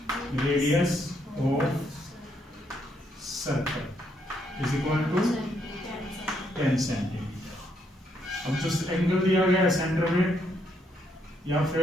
radius of circle is equal to 10 centimetre. अब जो एंगल दिया गया है सेंटर में या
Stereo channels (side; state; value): both; normal; correlation 0.74